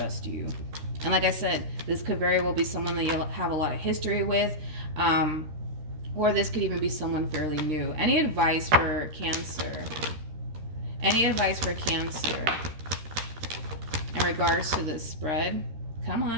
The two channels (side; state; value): left; late; 13 ms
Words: you. And like I said, this could very well be someone that you have a lot of history with, or this could even be someone fairly new. Any advice for Cancer? Any advice for Cancer in regards to this spread? Come